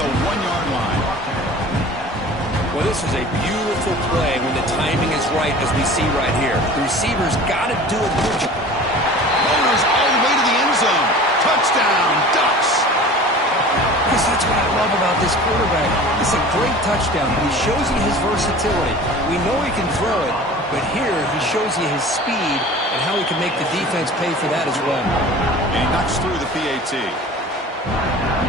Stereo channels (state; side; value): normal; both; correlation 0.41